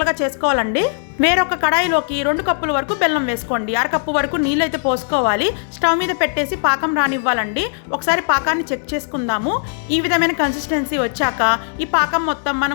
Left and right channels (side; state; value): right; silent; digital silence